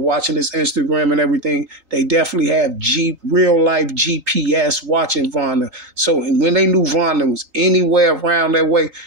watching his Instagram and everything, they definitely have real life GPS watching Von. So when they knew Von was anywhere around that way,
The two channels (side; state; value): left; late; 3.9 ms